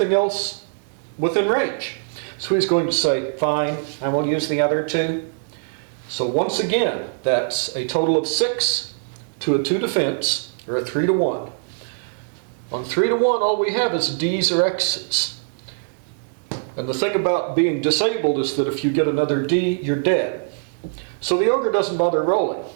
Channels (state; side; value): silent; left; digital silence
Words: else within range. So he's going to say, fine, I will use the other 2. So once again, that's a total of 6 to a 2 defense, or a 3 to 1. On 3 to 1, all we have is D's or X's. And the thing about being disabled is that if you get another D, you're dead. So the ogre doesn't bother rolling.